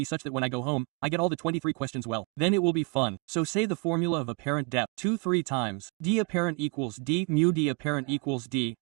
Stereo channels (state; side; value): quieter; left; 29.8 dB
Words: such that when I go home, I get all the 23 questions well. Then it will be fun. So say the formula of apparent depth 2-3 times. D apparent equals D mu D apparent equals D.